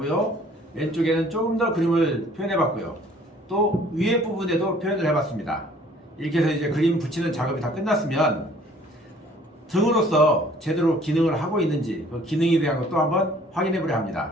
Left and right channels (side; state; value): both; normal; correlation 0.56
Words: 왼쪽에는 조금 더 그림을 표현해 봤고요. 또 위에 부분에도 표현을 해 봤습니다. 이렇게 해서 이제 그림 붙이는 작업이 다 끝났으면 등으로서 제대로 기능을 하고 있는지 그 기능에 대한 것도 한번 확인해 보려